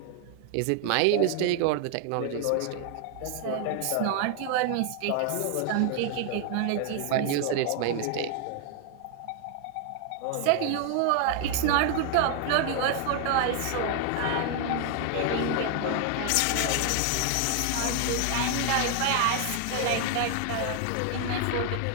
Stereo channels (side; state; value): both; different; correlation 0.00